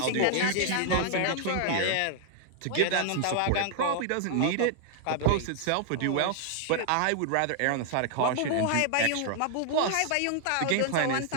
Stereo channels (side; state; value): both; different; correlation 0.00